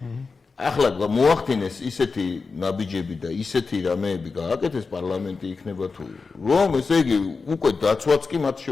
ახლა მოახდინეს ისეთი ნაბიჯები და ისეთი რამეები გააკეთეს პარლამენტი იქნება თუ რომ ესე იგი უკვე დაცვაც კი მათ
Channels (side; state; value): right; quieter; 4.5 dB